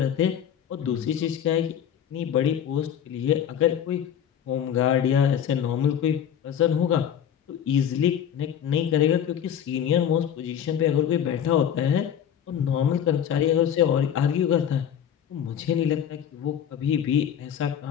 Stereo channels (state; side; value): quieter; right; 9.1 dB